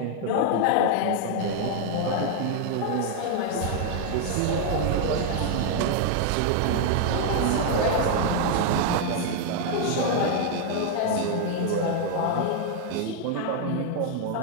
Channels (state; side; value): different; both; correlation 0.00